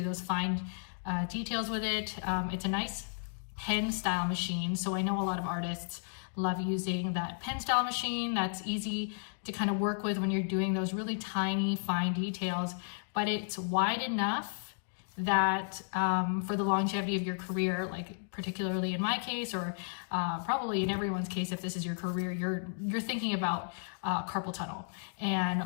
those fine details with it. It's a nice pen style machine, so I know a lot of artists love using that pen style machine. That's easy to kind of work with when you're doing those really tiny fine details, but it's wide enough that for the longevity of your career, like particularly in my case, or probably in everyone's case, if this is your career, you're thinking about carpal tunnel.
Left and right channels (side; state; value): right; silent; digital silence